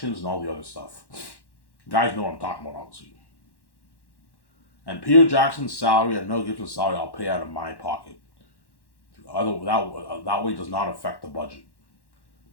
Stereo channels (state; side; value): late; right; 1.1 ms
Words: and all the other stuff. You guys know what I'm talking about, obviously. And Peter Jackson's salary and Mel Gibson's salary I'll pay out of my pocket. That way does not affect the budget.